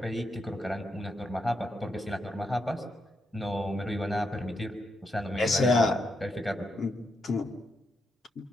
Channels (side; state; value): both; normal; correlation 0.81